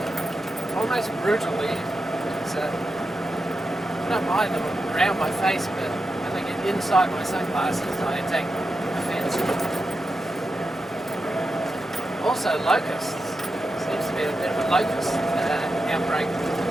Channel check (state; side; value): normal; both; correlation 0.89